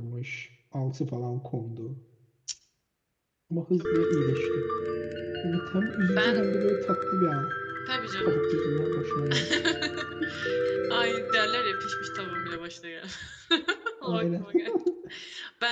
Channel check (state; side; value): identical; both; correlation 1.00